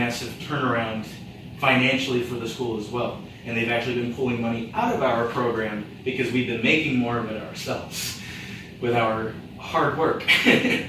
turnaround financially for the school as well. And they've actually been pulling money out of our program because we've been making more of it ourselves. with our hard work.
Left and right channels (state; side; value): identical; both; correlation 1.00